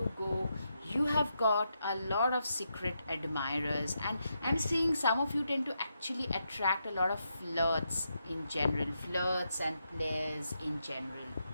go, you have got a lot of secret admirers. And I'm seeing some of you tend to actually attract a lot of flirts in general, flirts and players in general.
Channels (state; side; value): inverted; both; correlation -0.83